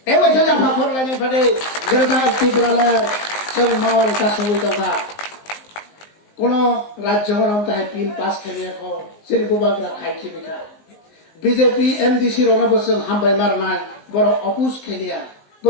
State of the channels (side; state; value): right; late; 19 ms